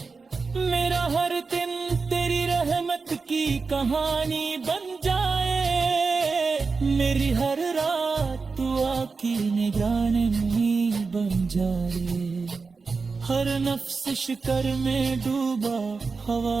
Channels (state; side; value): quieter; left; 4.5 dB